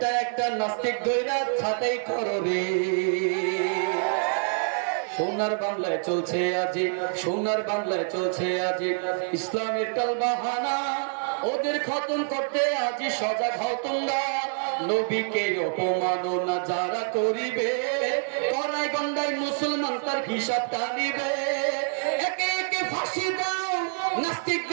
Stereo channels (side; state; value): left; silent; digital silence